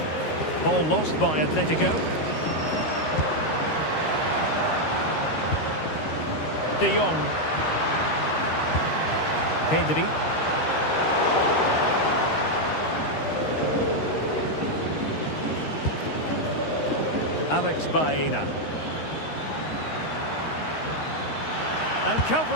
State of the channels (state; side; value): late; right; 13 ms